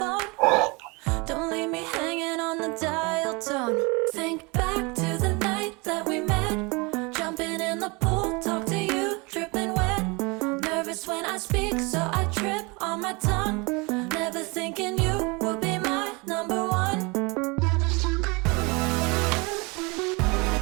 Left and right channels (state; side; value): quieter; left; 27.7 dB